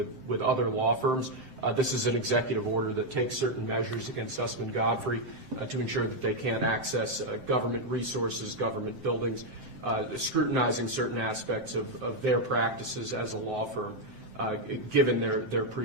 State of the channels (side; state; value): left; late; 7.8 ms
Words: other law firms. This is an executive order that takes certain measures against Sussman Godfrey to ensure that they can't access government resources, government buildings, scrutinizing certain aspects of their practices as a law firm, given their